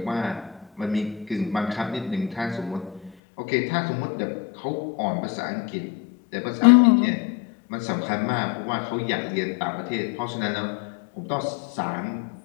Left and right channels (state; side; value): drops out; right; at 3.2 s